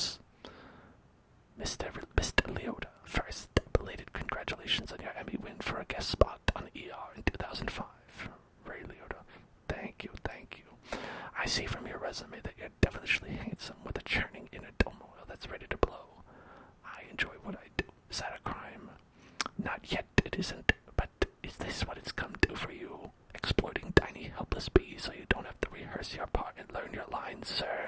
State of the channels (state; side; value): identical; both; correlation 1.00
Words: Mr. Leota, first, belated congratulations on your Emmy win for a guest spot on ER in 2005. Ray Leota, thank you. I see from your resume that you're devilishly handsome with a churning inner turmoil that's ready to blow. I enjoy what I do. Is that a crime? Not yet, it isn't, but is this what it's come to for you? Exploiting tiny, helpless bees so you don't have to rehearse your part and learn your lines,